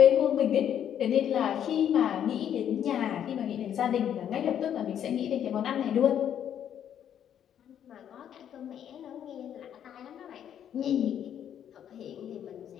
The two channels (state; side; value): quieter; right; 9.6 dB